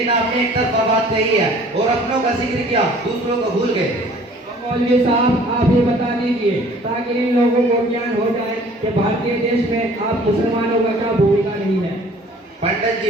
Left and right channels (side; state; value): both; normal; correlation 0.52